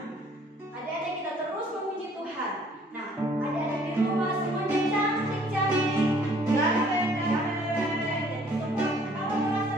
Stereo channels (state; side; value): normal; both; correlation 0.59